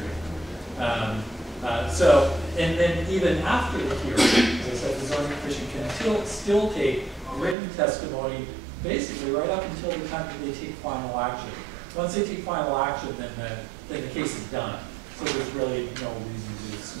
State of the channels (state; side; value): drops out; left; at 7.6 s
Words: And then even after the hearing, as I said, the Zoning Commission can still take written testimony basically right up until the time that they take final action. Once they take final action, then the case is done. So there's really no reason to